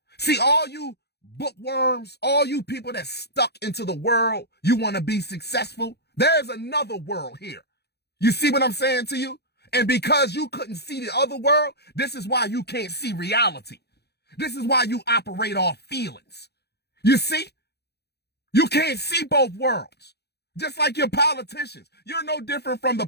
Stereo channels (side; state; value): right; late; 0.48 ms